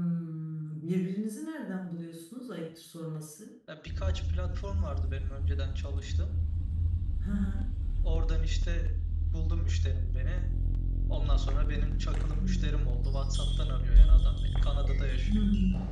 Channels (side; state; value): both; identical; correlation 1.00